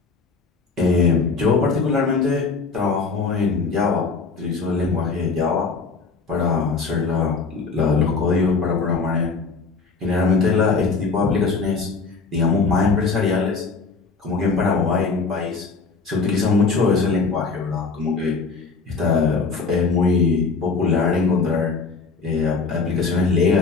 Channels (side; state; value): right; quieter; 4.5 dB